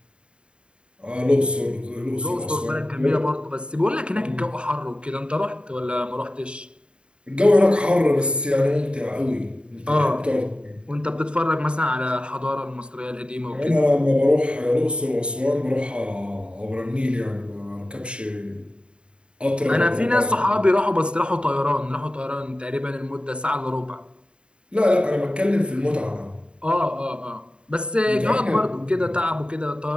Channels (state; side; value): late; left; 0.053 ms